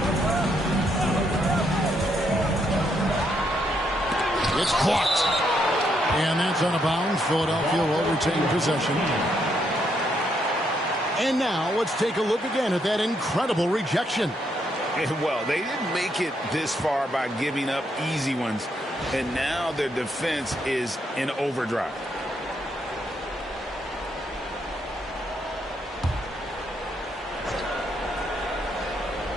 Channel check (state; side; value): normal; both; correlation 0.76